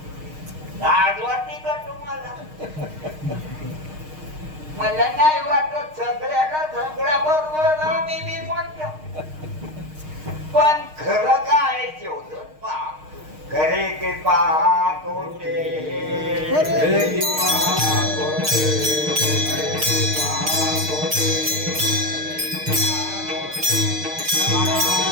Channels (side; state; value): left; late; 6.5 ms